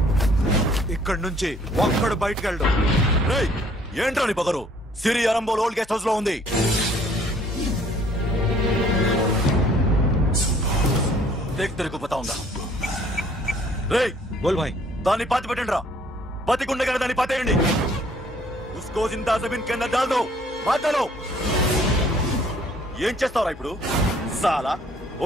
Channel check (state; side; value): normal; both; correlation 0.59